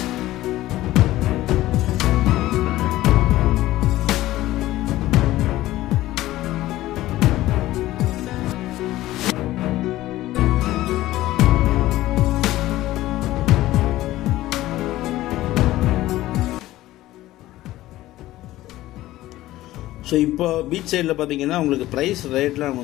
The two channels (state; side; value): quieter; right; 15.9 dB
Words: ஸோ இப்போ பீச் சைடில் பார்த்தீங்கன்னா உங்களுக்கு ப்ரைஸ் ரேட்லாம்